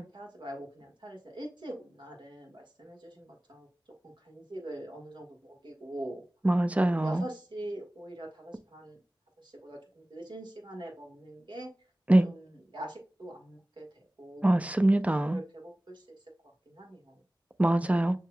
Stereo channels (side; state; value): both; normal; correlation 0.98